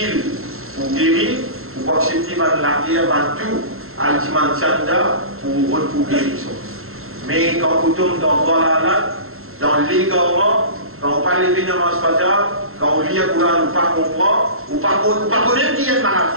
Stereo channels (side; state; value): left; late; 0.62 ms